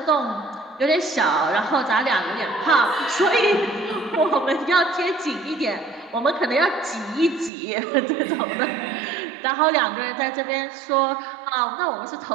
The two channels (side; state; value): left; drops out; at 7.5 s